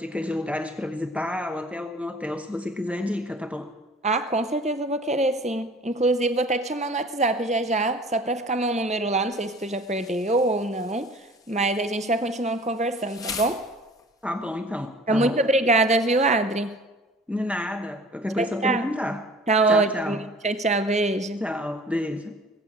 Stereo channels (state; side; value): normal; both; correlation 0.46